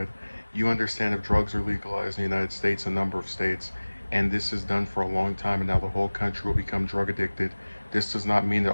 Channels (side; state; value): both; inverted; correlation -1.00